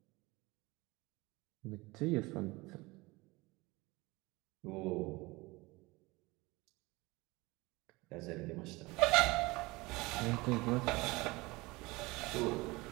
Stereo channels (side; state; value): left; quieter; 22.6 dB